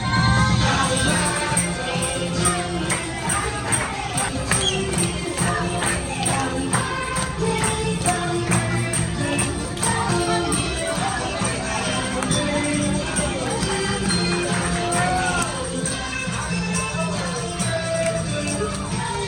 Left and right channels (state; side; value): identical; both; correlation 1.00